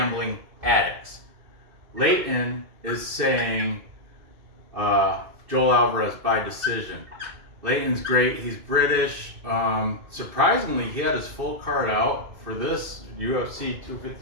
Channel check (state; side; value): late; left; 2.6 ms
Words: Addicts. Leighton is saying Joel Alvarez by decision. Leighton's great. He's British. Surprisingly, he had his full card out for this UFC